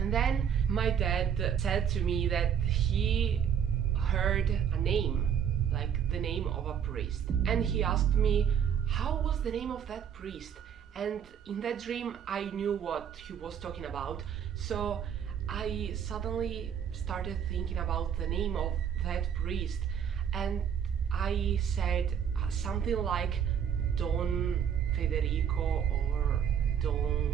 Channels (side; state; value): left; quieter; 8.3 dB